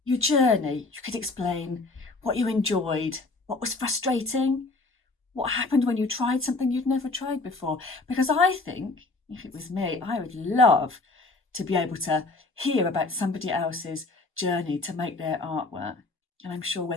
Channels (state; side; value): quieter; right; 3.4 dB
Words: your journey. You could explain what you enjoyed, what was frustrating, what happened when you tried something you'd never tried before. Because I think, if it was me, I would love to be able to hear about somebody else's journey to make their artwork. And I'm sure